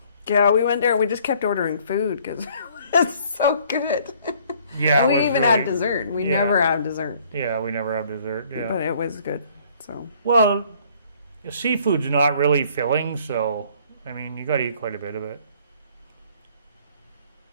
Yeah, we went there. We just kept ordering food because it was so good. Yeah, And it we was even really- had dessert. We yeah. never have dessert, Yeah, we never have dessert. Yeah. but it was good. So Well, seafood's not really filling, so I mean, you got to eat quite a bit of it.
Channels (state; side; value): inverted; both; correlation -0.59